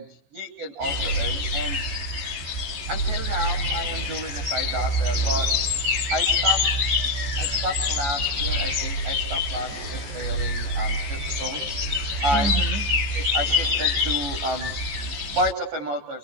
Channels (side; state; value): left; late; 14 ms